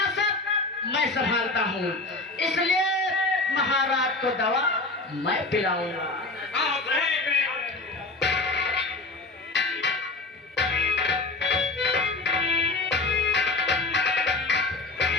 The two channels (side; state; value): right; quieter; 3.3 dB